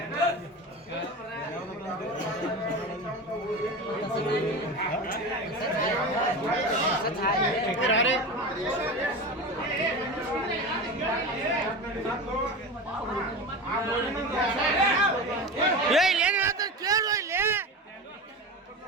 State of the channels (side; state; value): both; normal; correlation 0.27